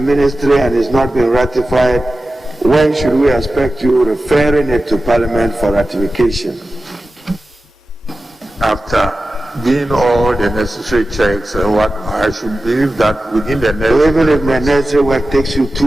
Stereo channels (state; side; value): normal; both; correlation 0.94